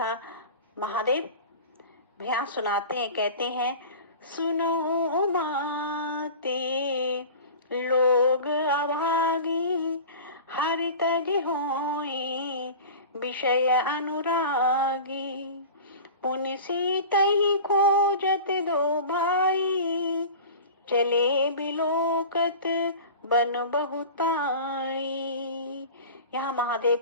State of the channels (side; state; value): both; inverted; correlation -0.36